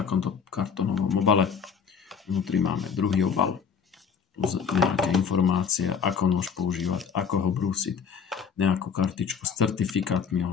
kartónovom obale. Vnútri máme druhý obal. Plus nejaké informácie, ako nôž používať, ako ho brúsiť, nejakú kartičku s certifikátmi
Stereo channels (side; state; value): right; quieter; 6.5 dB